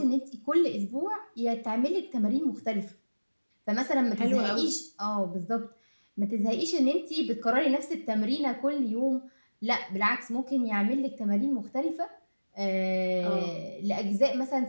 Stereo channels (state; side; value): inverted; both; correlation -1.00